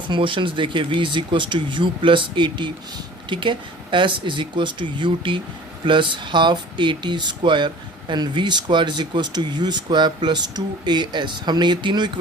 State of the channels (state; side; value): normal; both; correlation 0.45